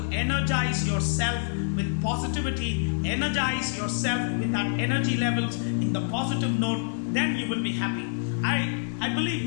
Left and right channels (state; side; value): silent; right; digital silence